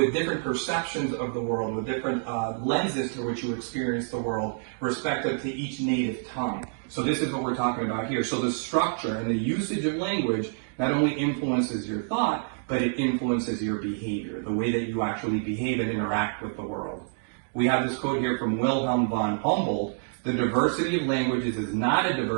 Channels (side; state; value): left; silent; digital silence